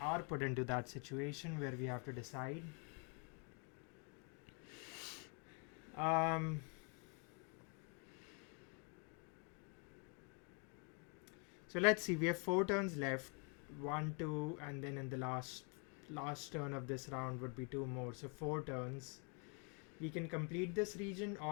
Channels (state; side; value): quieter; right; 35.5 dB